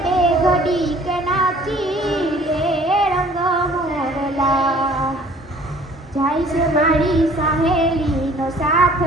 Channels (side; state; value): both; normal; correlation 0.53